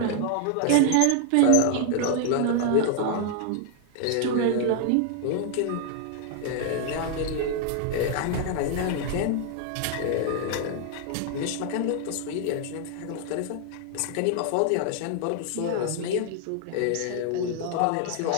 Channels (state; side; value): different; both; correlation 0.00